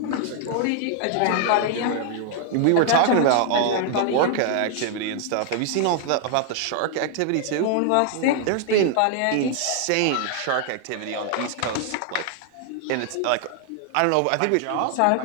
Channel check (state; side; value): different; both; correlation 0.00